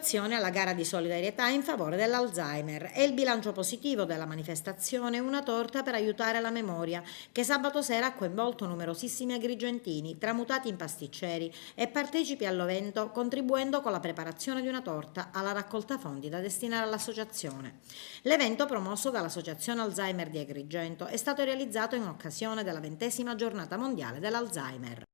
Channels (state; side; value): silent; right; digital silence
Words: alla gara di solidarietà in favore dell'Alzheimer e il bilancio positivo della manifestazione Una torta per aiutare la memoria, che sabato sera ha coinvolto numerosissimi agrigentini, tramutati in pasticceri e partecipi all'evento, contribuendo con la preparazione di una torta alla raccolta fondi da destinare all'associazione. L'evento, promosso dall'Associazione Alzheimer di Agrigento, è stato realizzato in occasione della 20ª giornata mondiale dell'Alzheimer.